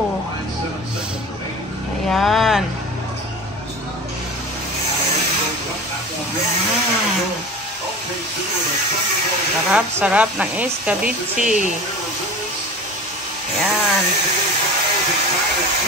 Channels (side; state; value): both; normal; correlation 0.34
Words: Ayan. Sarap-sarap ng escabeche. Ayan.